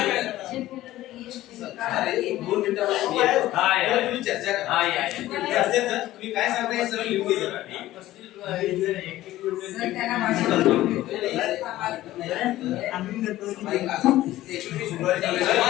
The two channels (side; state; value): right; quieter; 15.3 dB